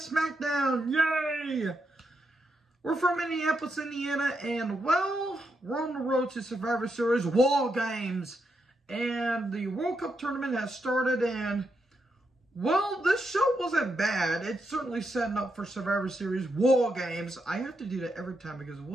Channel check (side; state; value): both; normal; correlation 0.83